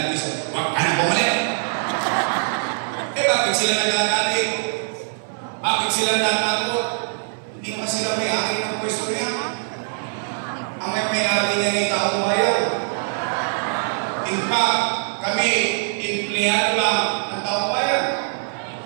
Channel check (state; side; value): silent; left; 62 dB below the other